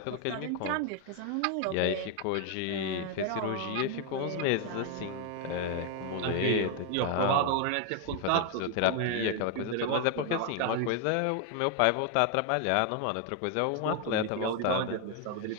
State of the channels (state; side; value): different; both; correlation 0.00